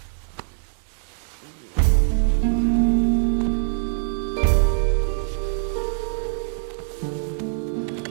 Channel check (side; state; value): left; silent; digital silence